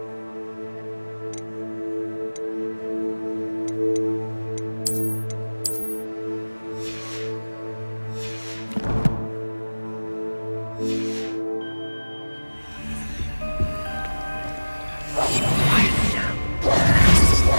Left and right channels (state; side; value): inverted; both; correlation -1.00